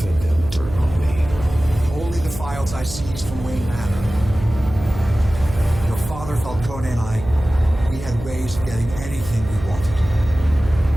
them dirt on me. Only the files I seized from Wayne Manor. Your father, Falcone, and I, we had ways of getting anything we wanted.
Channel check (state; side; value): noise; right; hum, 11 dB below the sound